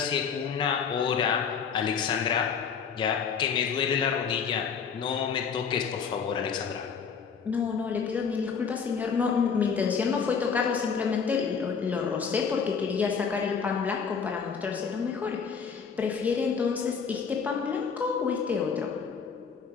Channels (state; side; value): quieter; right; 6.2 dB